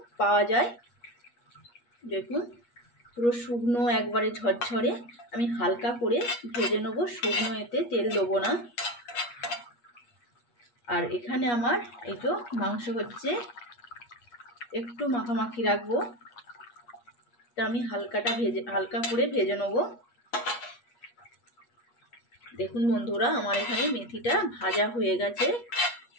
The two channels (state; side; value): late; right; 8.4 ms